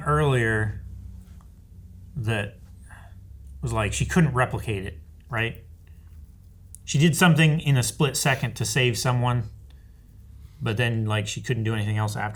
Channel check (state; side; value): identical; both; correlation 1.00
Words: earlier that was like she couldn't replicate it, right? She did something in a split second to save someone, but then like she couldn't do anything else